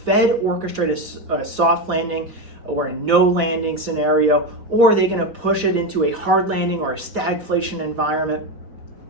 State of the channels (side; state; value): left; late; 4.9 ms